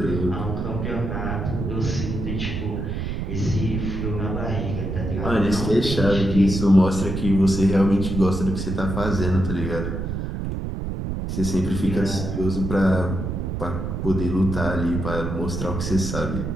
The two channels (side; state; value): right; noise; rumble, 3 dB below the sound